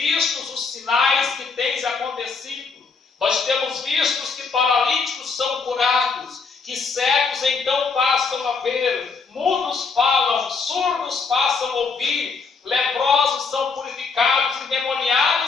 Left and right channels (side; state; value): right; quieter; 4.8 dB